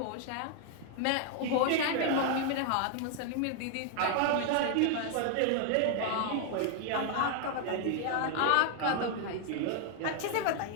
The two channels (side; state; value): both; different; correlation 0.00